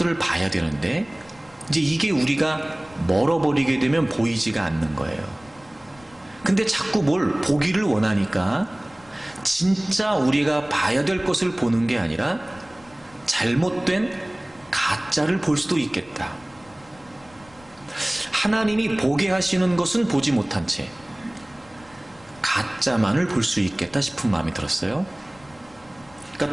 봐야 되는데, 이제 이게 우리가 멀어버리게 되면 보이지가 않는 거예요. 근데 자꾸 뭘 보기를 원하니까 진짜 우리가 봐야 될 것을 보는 게 아니라 잘못된 가짜를 볼 수도 있겠다. 하나님이 보게 하시는 것은 보지 못한 채 가짜만을 볼 수 있겠다 싶은 마음이 들었어요. 그러니까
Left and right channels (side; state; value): left; noise; rumble, 26 dB below the sound